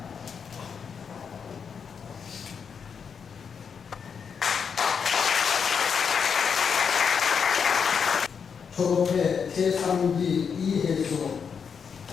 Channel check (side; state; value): right; quieter; 6.5 dB